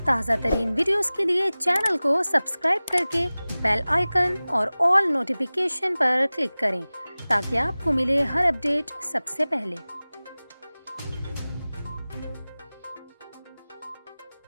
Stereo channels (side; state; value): both; inverted; correlation -0.98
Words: تازہ ترین ویڈیوز کے لیے چینل کو سبسکرائب کر کے بیل آئیکن اور آل نوٹیفیکیشن پر کلک کریں تاکہ آپ کو ملے ہر اپڈیٹ سب سے پہلے۔